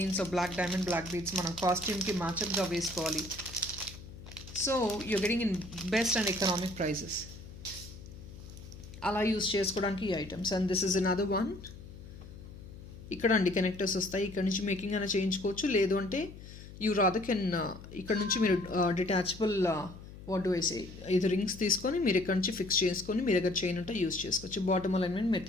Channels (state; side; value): noise; left; hum, 15 dB below the sound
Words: of black diamond black beads. మనం కాస్ట్యూమ్కి మ్యాచప్గా వేసుకోవాలి. So you're getting in best and economic prices. అలా use చేసుకోవడానికి ఈ items. And this is another one. ఇక్కడ అండి connectors వస్తాయి. ఇక్కడ నుంచి మేకింగ్ అయినా చేయించుకోవచ్చు, లేదు అంటే యూ రాదర్ కెన్ ఇక్కడ నుంచి మీరు detachable what do I say, ఇది రింగ్స్ తీసుకొని మీరు ఇక్కడ నుంచి ఫిక్స్ చేసుకొని మీ దగ్గర చైన్ ఉంటే యూస్ చేసుకోవచ్చు. బాటమ్ అలైన్మెంట్ మీరు